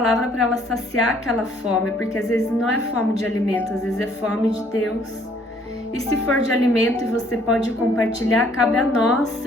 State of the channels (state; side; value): normal; both; correlation 0.62